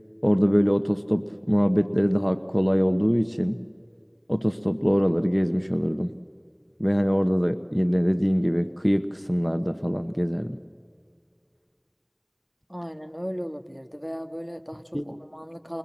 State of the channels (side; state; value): both; identical; correlation 1.00